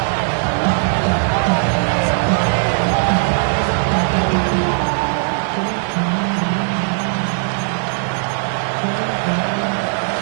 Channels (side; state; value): left; silent; digital silence